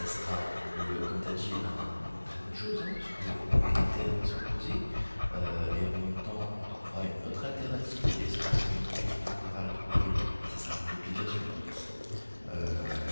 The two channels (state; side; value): inverted; both; correlation -1.00